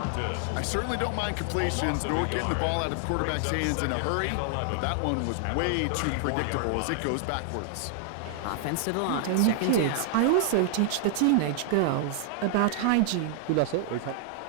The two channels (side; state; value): both; different; correlation 0.00